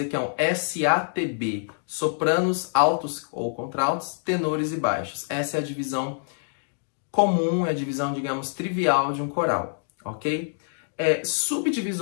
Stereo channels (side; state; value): right; silent; digital silence